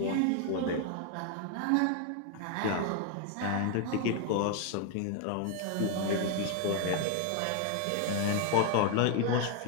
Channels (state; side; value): different; both; correlation 0.01